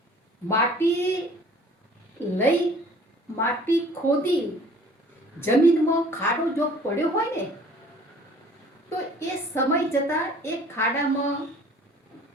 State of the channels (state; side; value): normal; both; correlation 0.52